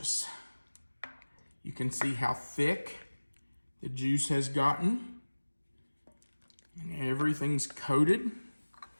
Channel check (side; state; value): both; inverted; correlation -1.00